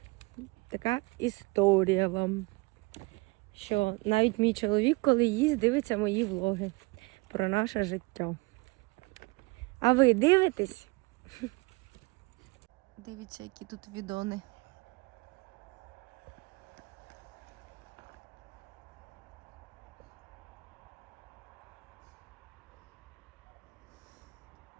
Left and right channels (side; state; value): left; quieter; 26.0 dB